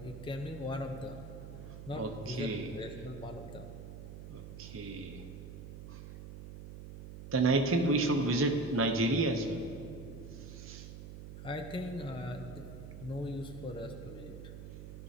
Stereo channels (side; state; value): right; noise; hum, 11 dB below the sound